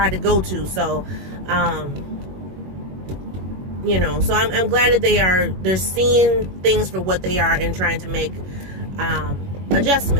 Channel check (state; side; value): late; left; 21 ms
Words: to go to. So, you know, so I'm glad that they're seeing things for what they are and trying to make